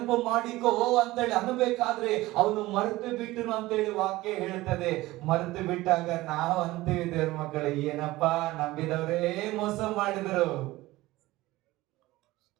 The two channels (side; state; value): left; quieter; 18.4 dB